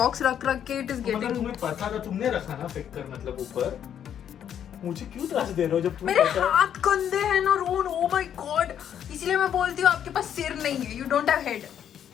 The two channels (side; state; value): right; quieter; 9.4 dB